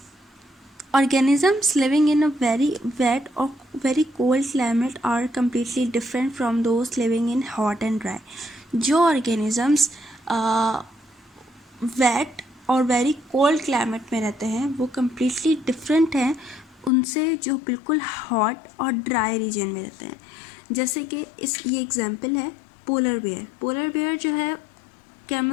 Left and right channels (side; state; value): right; drops out; at 16.9 s